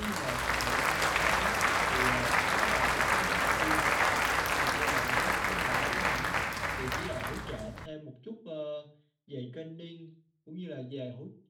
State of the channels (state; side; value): identical; both; correlation 1.00